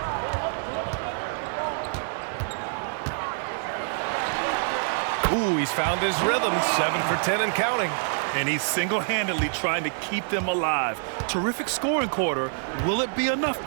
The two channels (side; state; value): left; silent; digital silence